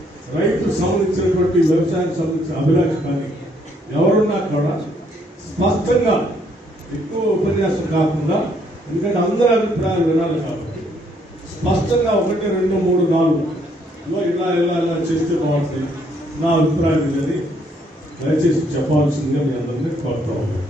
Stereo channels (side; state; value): both; normal; correlation 0.69